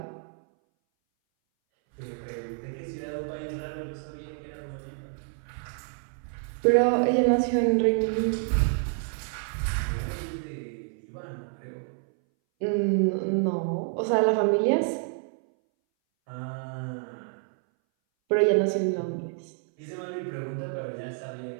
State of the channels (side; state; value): left; silent; 59 dB below the other